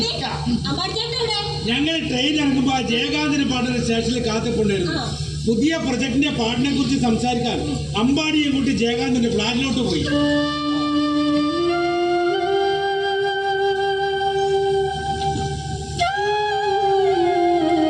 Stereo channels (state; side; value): identical; both; correlation 1.00